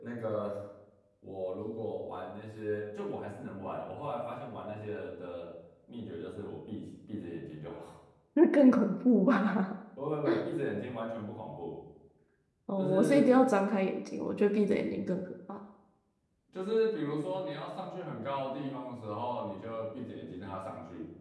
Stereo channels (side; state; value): both; identical; correlation 1.00